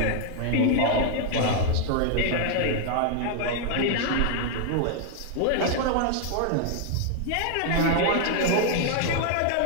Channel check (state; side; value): different; both; correlation 0.00